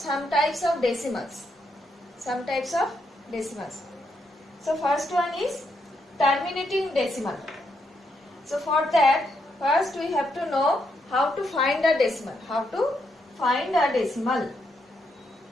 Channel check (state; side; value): normal; both; correlation 0.79